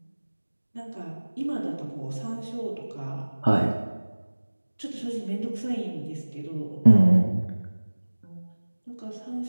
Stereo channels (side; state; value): both; inverted; correlation -1.00